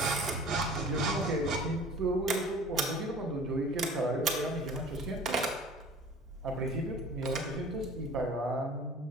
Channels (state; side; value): normal; both; correlation 0.45